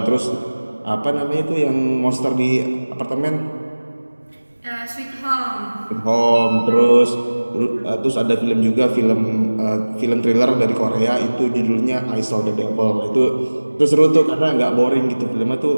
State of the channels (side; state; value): both; inverted; correlation -1.00